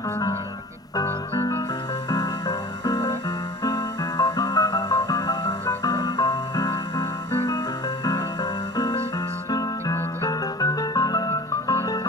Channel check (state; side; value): normal; both; correlation 0.40